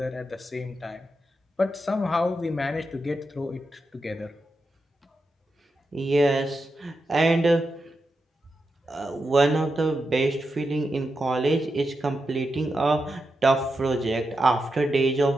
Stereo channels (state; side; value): normal; both; correlation 0.87